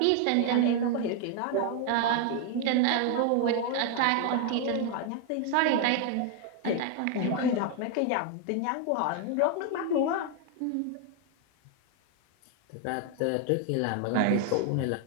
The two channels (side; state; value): both; different; correlation 0.00